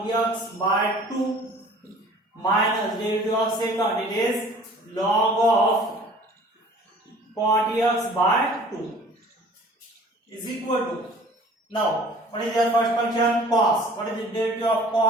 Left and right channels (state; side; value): normal; both; correlation 0.49